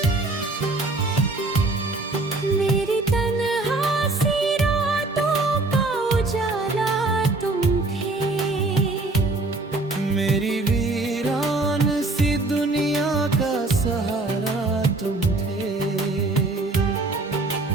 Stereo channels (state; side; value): quieter; left; 3.1 dB